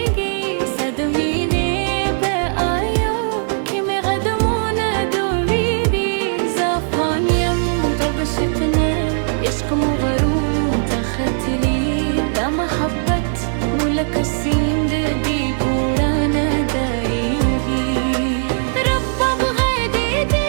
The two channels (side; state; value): left; silent; digital silence